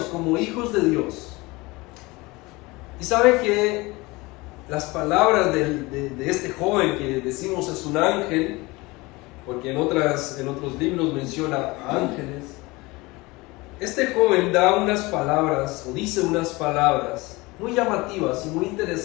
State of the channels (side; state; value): right; quieter; 23.0 dB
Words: como hijos de Dios. Y sabe que las palabras de este joven que decimos es un ángel, porque en otros libros menciona a ángeles, este joven da unas palabras, o dice unas palabras muy llamativas y muy